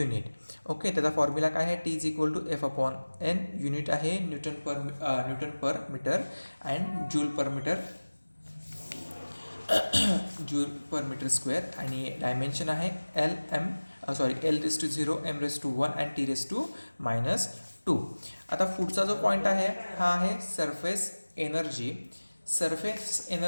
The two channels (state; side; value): inverted; both; correlation -1.00